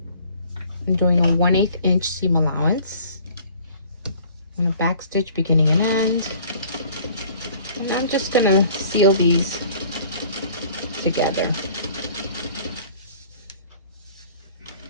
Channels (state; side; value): inverted; both; correlation -0.52